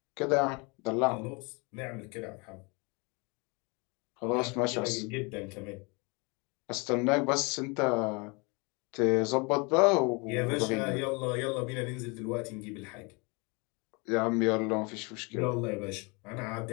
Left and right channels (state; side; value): quieter; right; 29.7 dB